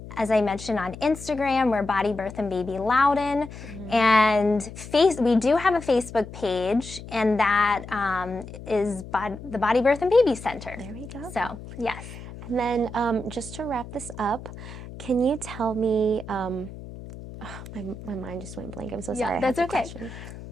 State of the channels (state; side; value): noise; left; hum, 13 dB below the sound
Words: as I mentioned, on Instagram, we're Body Birth and Baby Loudon. And we do have a Facebook page, and that is the Body Birth and Baby Center. There we go. So, yes. And then just to wrap this up, can you tell me, my mind just went blank. I'm so sorry. Yeah, that's okay.